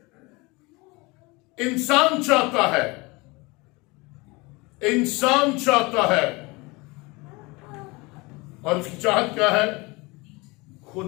इंसान चाहता है, इंसान चाहता है, और उसकी चाहत क्या है?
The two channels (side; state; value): right; quieter; 24.9 dB